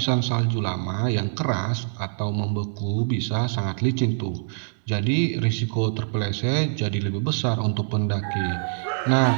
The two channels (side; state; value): left; silent; digital silence